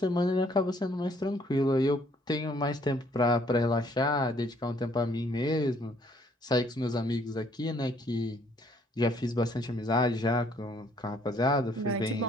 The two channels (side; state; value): both; normal; correlation 0.64